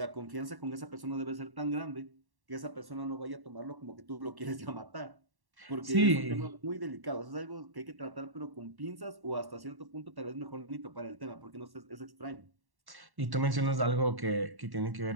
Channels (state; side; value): late; left; 1.1 ms